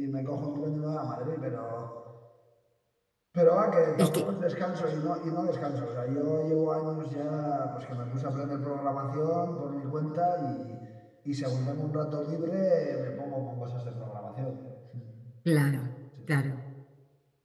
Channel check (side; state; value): both; identical; correlation 1.00